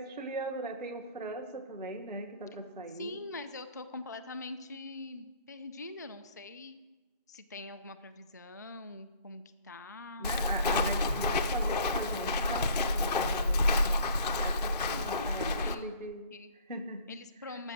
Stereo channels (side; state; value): both; inverted; correlation -0.52